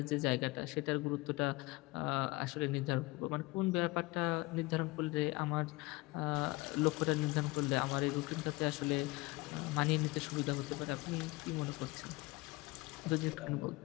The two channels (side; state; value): right; quieter; 22.7 dB